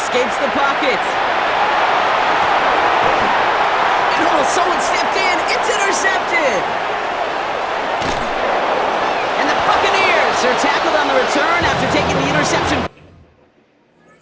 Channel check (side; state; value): both; identical; correlation 1.00